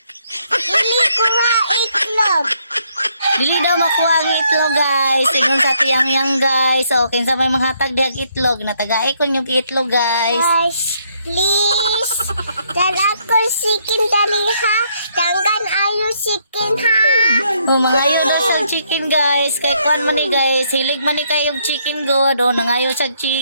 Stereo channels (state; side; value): inverted; both; correlation -0.71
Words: Dili ko nga itlog. Dili daw makuha ang itlog guys. Ingon sa tiyang guys. So, kinsa may manghatag diag itlog. Natagay ko yung itlog guys. Guys, please. Dan ako sikin dali ha. Tanggan ayo sikin ha. Oh, mangayo daw siyang chicken guys. Kay kuan man ni guys. Hilig man ni kayong chicken god. Oh, nangayo siyang